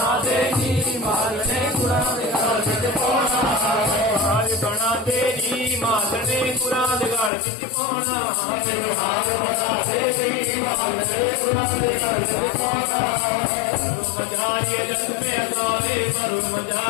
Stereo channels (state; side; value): drops out; right; at 7.3 s